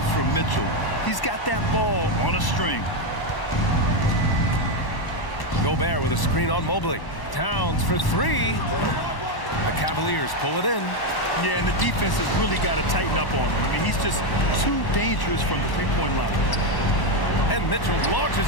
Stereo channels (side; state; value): right; late; 1.1 ms